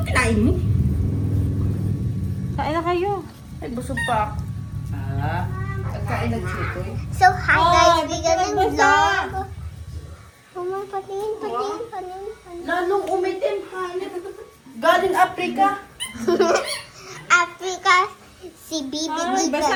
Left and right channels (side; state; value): both; identical; correlation 1.00